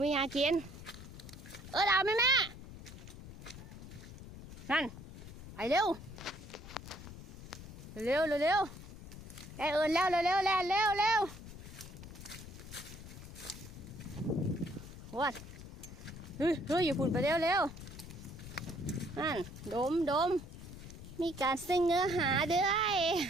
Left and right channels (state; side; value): noise; left; rumble, 13 dB below the sound